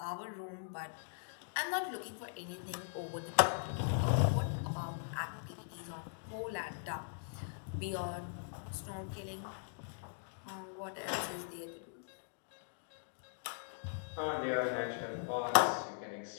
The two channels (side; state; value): right; silent; digital silence